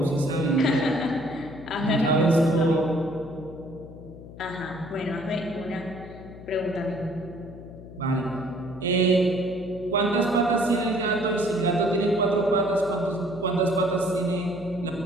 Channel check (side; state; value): left; noise; hum, 15 dB below the sound